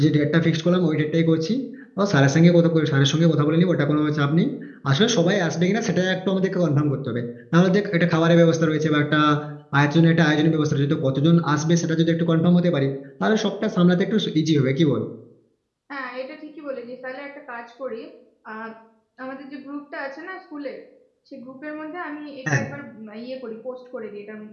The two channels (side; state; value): both; identical; correlation 1.00